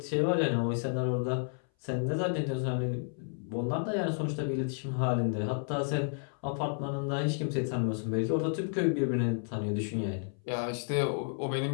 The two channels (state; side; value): silent; right; 57 dB below the other